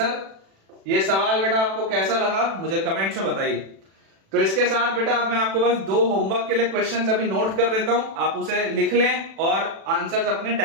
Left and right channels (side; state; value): left; late; 36 ms